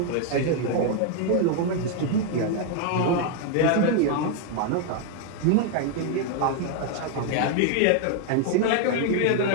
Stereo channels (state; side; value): different; both; correlation 0.00